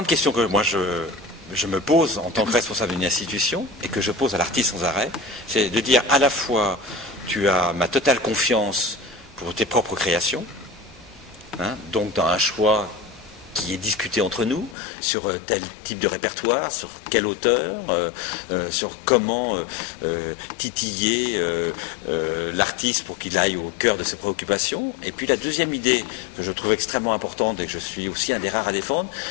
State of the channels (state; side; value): drops out; right; at 14.8 s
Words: question que moi je me pose en tant que responsable d'une institution et que je pose à l'artiste sans arrêt, c'est de dire à la fois tu as ma totale confiance pour tes propres créations, hein, donc dans un choix qui est discuté entre nous sur tel type de répertoire, sur quel auteur, sur comment titiller l'artiste pour qu'il aille au cœur de ses préoccupations. Et puis la deuxième idée que je trouve extrêmement importante et que je suis aussi un des rares à défendre,